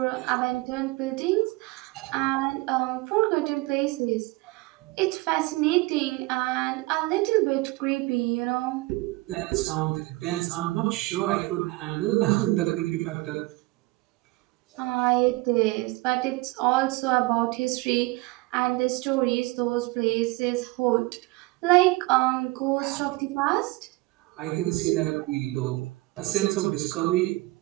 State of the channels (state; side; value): quieter; left; 22.3 dB